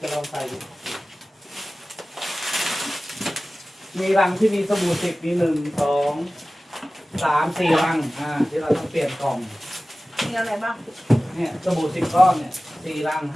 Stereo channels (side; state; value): both; normal; correlation 0.97